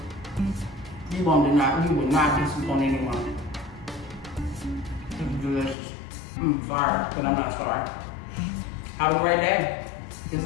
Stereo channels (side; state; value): right; drops out; at 5.8 s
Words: You will not disappoint anyone. It's delicious. Sorry, but I'm not sorry. Have a great day. This